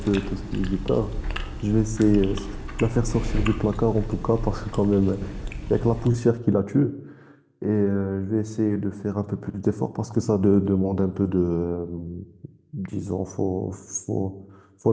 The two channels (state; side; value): identical; both; correlation 1.00